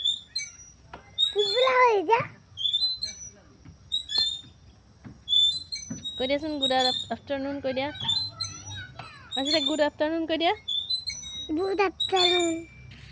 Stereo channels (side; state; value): both; identical; correlation 1.00